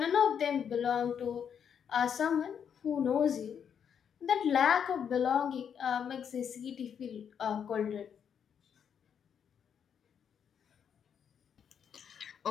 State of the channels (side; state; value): right; quieter; 7.8 dB